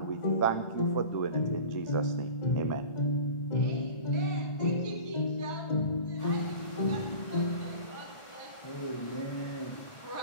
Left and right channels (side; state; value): right; late; 1.4 ms